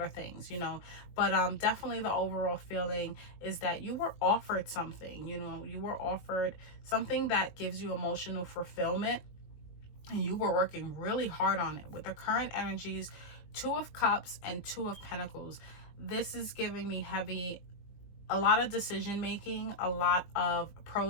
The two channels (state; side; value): late; right; 20 ms